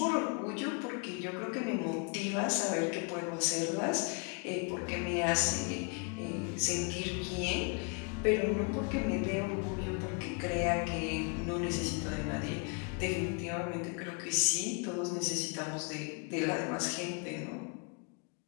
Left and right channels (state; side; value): quieter; right; 35.4 dB